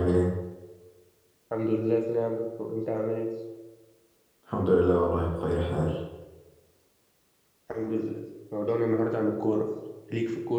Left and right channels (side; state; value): both; identical; correlation 1.00